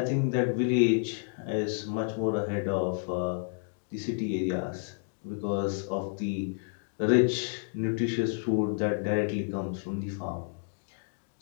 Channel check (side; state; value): right; silent; digital silence